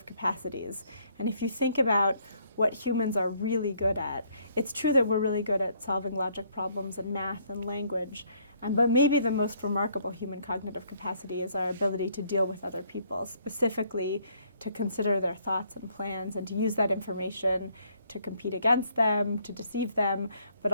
capacities. And if you think about what humans are really good at, it's true that we're really good at solving logic problems and math and language, but maybe the most remarkable human cognitive capacity is our ability to deal with other people, specifically to consider their thoughts and plans and to use that information to compete against them, to deceive them, but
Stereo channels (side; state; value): both; inverted; correlation -0.67